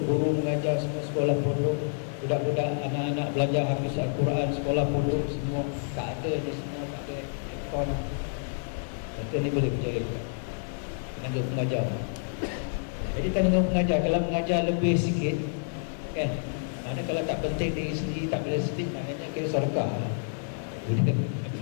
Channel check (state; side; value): silent; right; 59 dB below the other